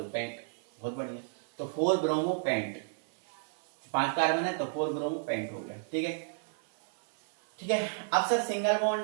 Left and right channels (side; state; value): left; silent; 56 dB below the other